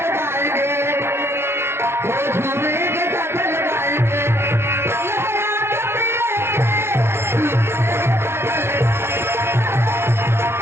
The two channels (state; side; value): late; left; 0.12 ms